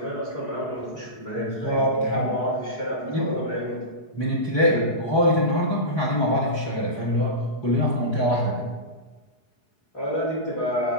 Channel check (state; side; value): late; right; 4.7 ms